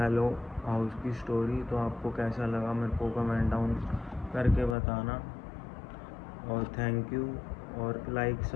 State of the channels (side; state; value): right; drops out; at 4.8 s